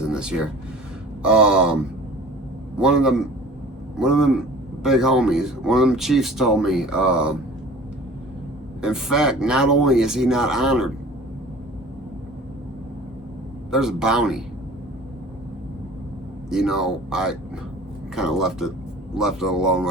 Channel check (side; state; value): both; normal; correlation 0.44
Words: this year. One of them big homies, one of them chiefs told me, in fact, not only is he not honored, there's a bounty. You know, I kind of left it alone